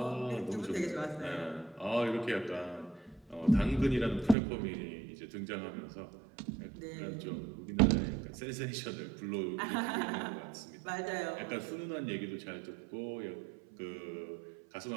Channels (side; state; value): left; drops out; at 4.4 s